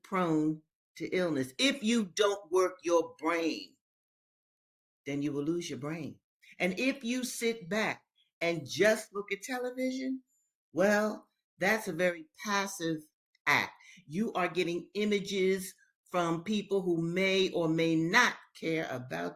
prone to illness. If you don't work your brain, then you will lose your brain. And if you sit back and just look at television, well, that's a very passive act. You are getting images from people who may or may not care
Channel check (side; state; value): both; identical; correlation 1.00